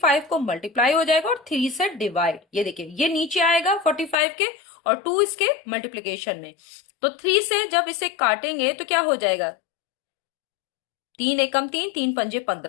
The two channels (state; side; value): drops out; right; at 4.2 s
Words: को मल्टीप्लाई हो जाएगा और 3 से डिवाइड। ये देखिए ये नीचे आएगा 45 के और 2 इसके मल्टीप्लीकेशन में, तो 3 से जब इसे काटेंगे तो क्या हो जाएगा? 3 एकम 3, 3 पंजे